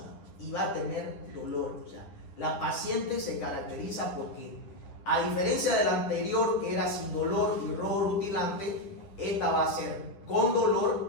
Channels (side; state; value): right; late; 10 ms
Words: y va a tener dolor. O sea, la paciente se caracteriza porque, a diferencia de la anterior, que era sin dolor y rojo rutilante, esta va a ser con